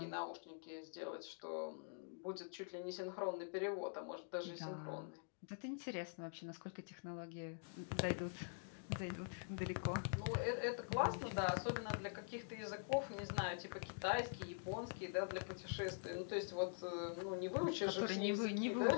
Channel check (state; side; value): silent; right; digital silence